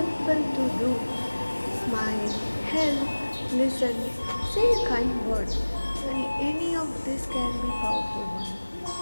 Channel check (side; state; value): both; inverted; correlation -1.00